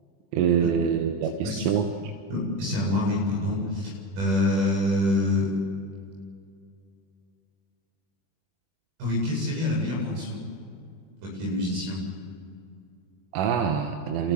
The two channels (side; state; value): left; late; 21 ms